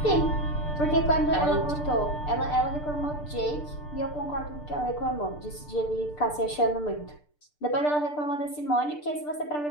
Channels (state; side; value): late; right; 6.8 ms